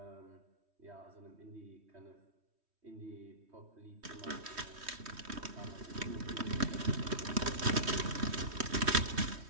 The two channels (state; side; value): late; left; 3.1 ms